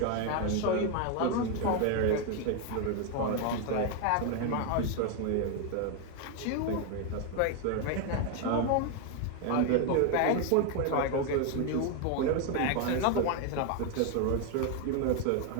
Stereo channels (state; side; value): different; both; correlation 0.01